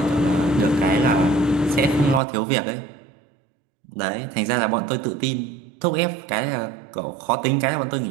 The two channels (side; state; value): left; drops out; at 2.2 s